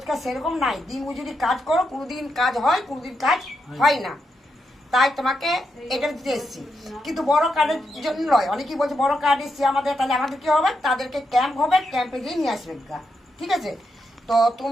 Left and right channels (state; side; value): normal; both; correlation 0.83